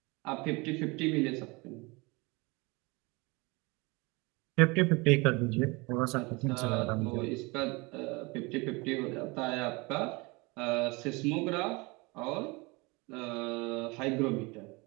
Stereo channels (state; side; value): quieter; left; 26.1 dB